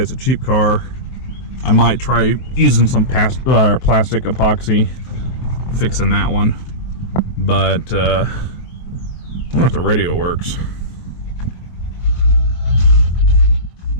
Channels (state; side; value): late; right; 24 ms